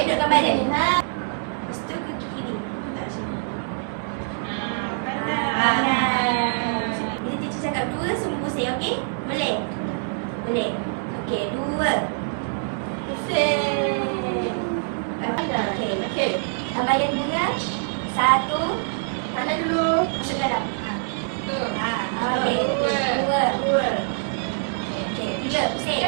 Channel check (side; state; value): left; silent; digital silence